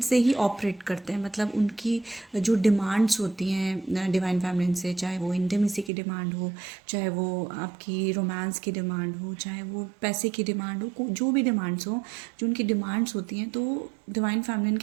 से ही ऑपरेट करते हैं, मतलब उनकी जो डिमांड्स होती हैं डिवाइन फैमिलीन से, चाहे वो इंटीमेसी की डिमांड हो, चाहे वो आपकी रोमांस की डिमांड हो, चाहे वो पैसे की डिमांड हो, जो भी डिमांड्स हो, जो उनकी डिमांड्स होती हैं, तो डिवाइन फैमिलीन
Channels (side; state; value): left; drops out; at 5.9 s